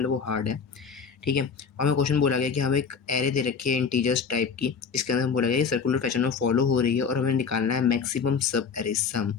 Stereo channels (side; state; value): right; quieter; 5.9 dB